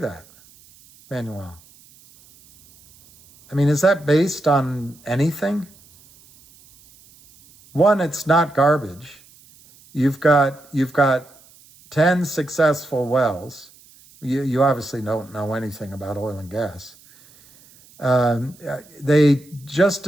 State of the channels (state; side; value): noise; right; hiss, 27 dB below the sound